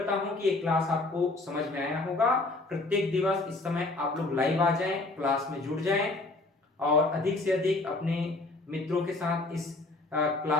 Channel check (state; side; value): quieter; right; 3.1 dB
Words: हूं कि ये क्लास आपको समझ में आया होगा। प्रत्येक दिवस इस समय आप लोग लाइव आ जाएं, क्लास में जुड़ जाएं और अधिक से अधिक अपने मित्रों के साथ इस